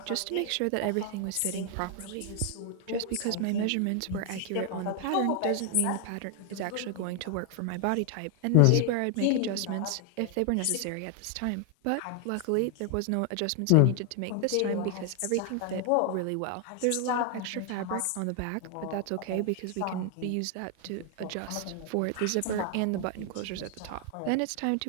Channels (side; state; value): both; different; correlation 0.00